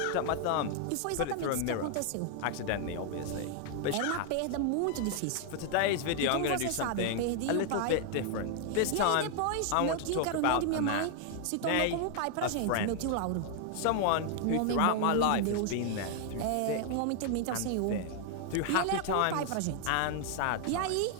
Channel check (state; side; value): different; both; correlation 0.00